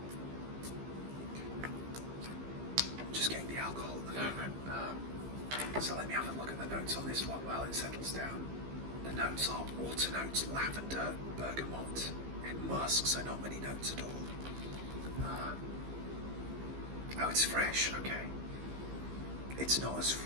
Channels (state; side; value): late; left; 15 ms